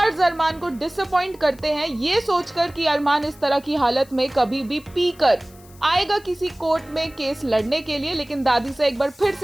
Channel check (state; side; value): noise; left; hiss, 25 dB below the sound